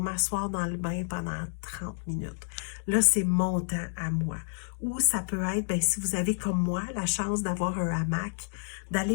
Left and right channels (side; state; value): right; silent; digital silence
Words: dans le bain pendant 30 minutes. Là, c'est mon temps à moi. Ou ça peut être, ben, si vous avez comme moi la chance d'avoir un hamac,